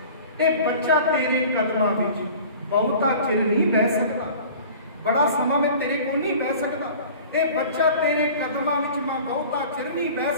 ਇਹ ਬੱਚਾ ਤੇਰੇ ਕਦਮਾਂ ਵਿੱਚ ਬਹੁਤਾ ਚਿਰ ਨਹੀਂ ਬਹਿ ਸਕਦਾ, ਬੜਾ ਸਮਾਂ ਮੈਂ ਤੇਰੇ ਕੋਲ ਨਹੀਂ ਬਹਿ ਸਕਦਾ। ਇਹ ਬੱਚਾ ਤੇਰੇ ਕਦਮਾਂ ਵਿੱਚ ਮੈਂ ਬਹੁਤਾ ਚਿਰ ਨਹੀਂ ਬਹਿ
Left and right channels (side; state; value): both; inverted; correlation -0.43